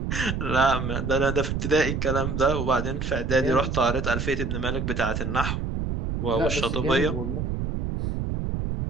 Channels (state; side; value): noise; right; rumble, 2 dB below the sound